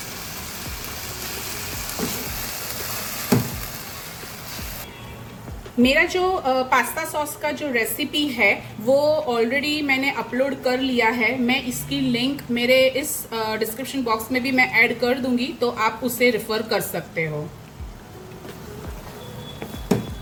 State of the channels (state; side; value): identical; both; correlation 1.00